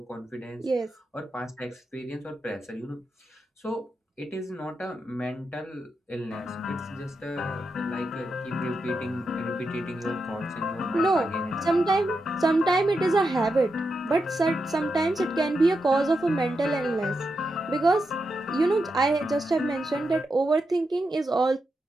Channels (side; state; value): both; normal; correlation 0.86